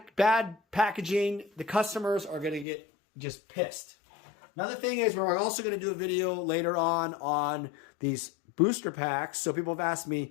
packaging, the customers are going to get just pissed. Another thing is, we're also going to do a video later on these booster packs. So people have asked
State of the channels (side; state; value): right; drops out; at 2.7 s